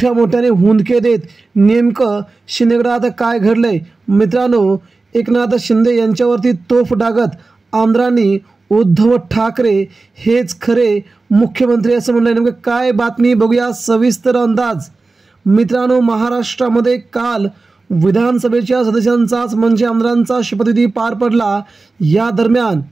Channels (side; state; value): left; quieter; 3.7 dB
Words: मोठ्याने हुंदके देत। नेमकं शिंदे गटात काय घडलंय? मित्रांनो, एकनाथ शिंदे यांच्यावरती तोफ डागत आमदारांनी उद्धव ठाकरे हेच खरे मुख्यमंत्री असं म्हणलं। नेमकं काय बातमी बघूया सविस्तर अंदाज। मित्रांनो, महाराष्ट्रामध्ये काल विधानसभेच्या सदस्यांचाच म्हणजे आमदारांचा शपथविधी पार पडला। या दरम्यान